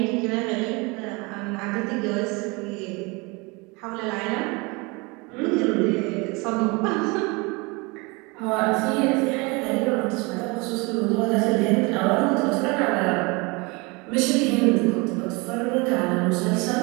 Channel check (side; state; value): left; quieter; 27.1 dB